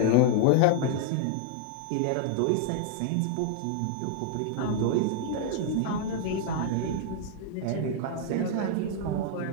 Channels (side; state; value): both; different; correlation 0.00